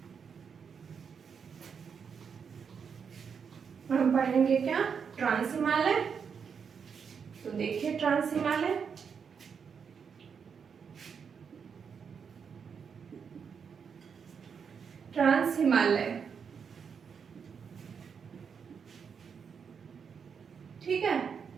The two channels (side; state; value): left; quieter; 6.5 dB